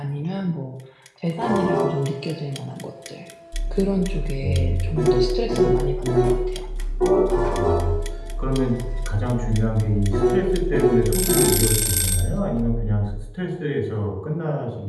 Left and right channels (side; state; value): both; identical; correlation 1.00